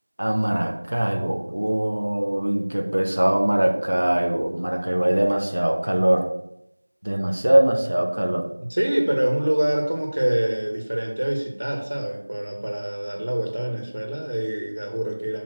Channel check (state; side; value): inverted; both; correlation -1.00